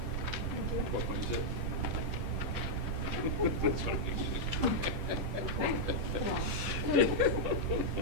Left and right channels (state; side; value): late; left; 10 ms